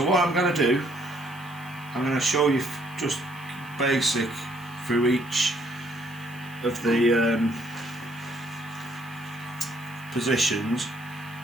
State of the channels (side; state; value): left; noise; hiss, 23 dB below the sound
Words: what I'm going to do, I'm going to show you just basic through each of the positions.